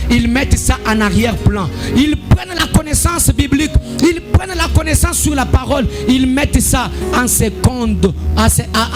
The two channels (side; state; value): both; identical; correlation 1.00